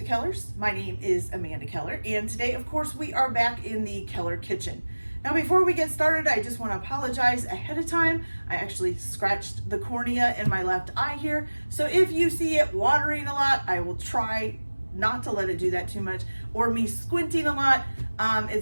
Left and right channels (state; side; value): inverted; both; correlation -1.00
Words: Kellers. My name is Amanda Keller and today of course we are back in the Keller kitchen. Now before we get started I just want to apologize ahead of time. I actually scratched the cornea in my left eye here, so if you see it watering a lot I will try not to let it do that too much, or me squinting a lot.